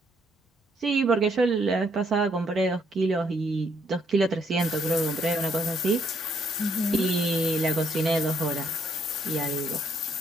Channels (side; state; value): both; normal; correlation 0.71